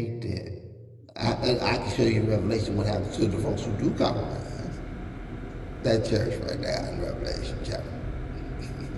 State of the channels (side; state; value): both; identical; correlation 1.00